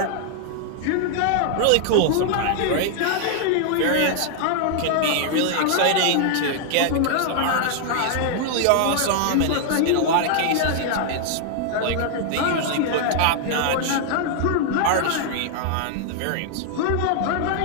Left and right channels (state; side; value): different; both; correlation 0.00